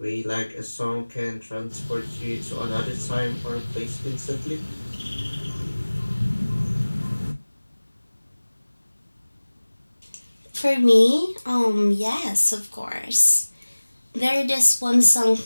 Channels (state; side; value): inverted; both; correlation -1.00